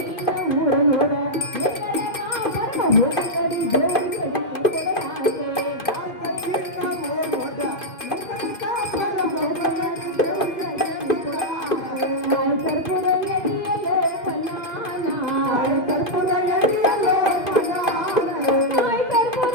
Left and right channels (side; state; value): right; late; 2.5 ms